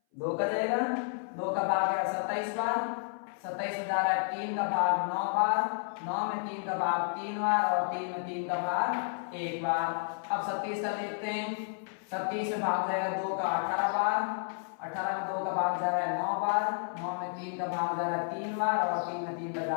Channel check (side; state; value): right; silent; 57 dB below the other